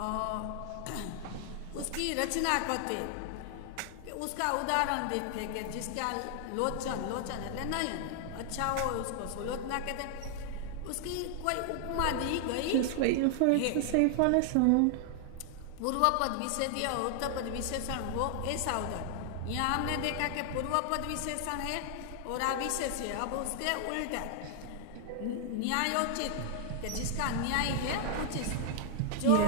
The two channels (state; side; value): different; both; correlation 0.00